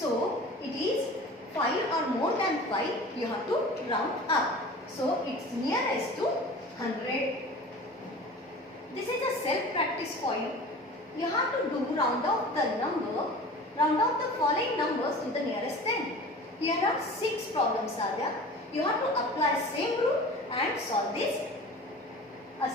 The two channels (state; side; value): normal; both; correlation 0.39